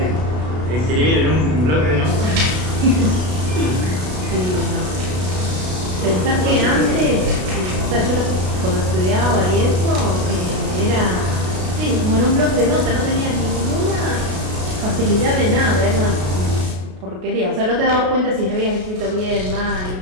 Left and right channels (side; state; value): left; late; 33 ms